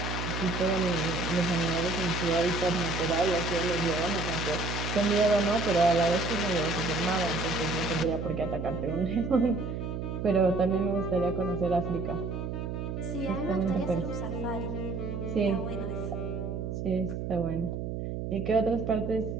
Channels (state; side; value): noise; right; hum, 4 dB below the sound